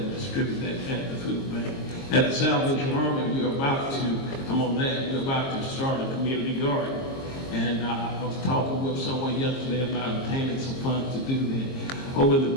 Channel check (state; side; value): late; right; 22 ms